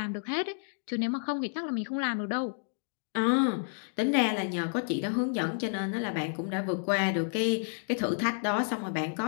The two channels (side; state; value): right; silent; digital silence